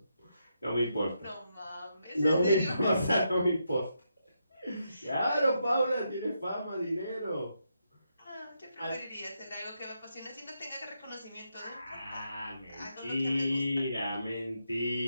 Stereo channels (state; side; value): inverted; both; correlation -0.82